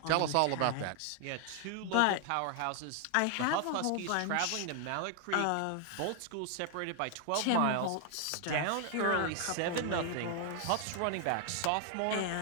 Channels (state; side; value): different; both; correlation 0.00